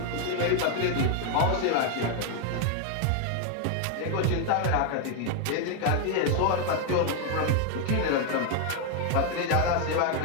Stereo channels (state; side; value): different; both; correlation 0.00